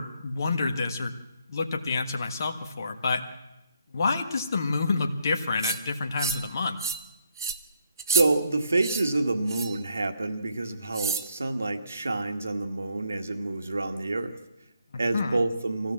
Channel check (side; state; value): both; inverted; correlation -0.74